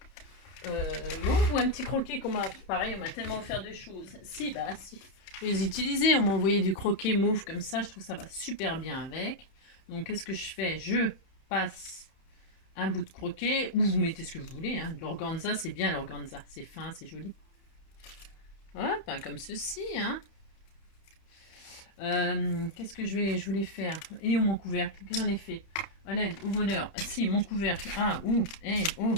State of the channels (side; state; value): right; late; 31 ms